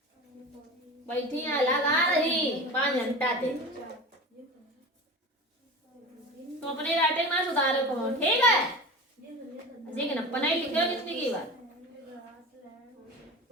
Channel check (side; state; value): both; normal; correlation 0.32